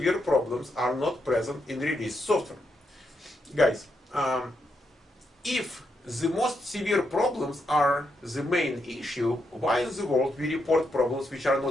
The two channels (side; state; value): both; normal; correlation 0.81